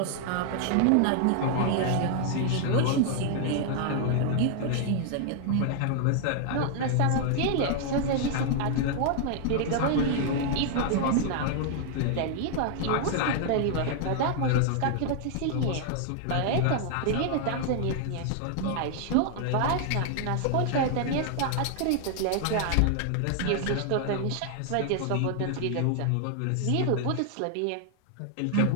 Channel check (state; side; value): different; both; correlation 0.00